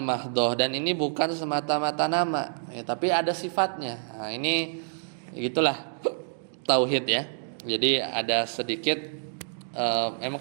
dan ini bukan semata-mata nama ya, tapi ada sifatnya. Nah, ini gitulah tauhid ya. Jadi ada sedikit memang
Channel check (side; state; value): left; silent; digital silence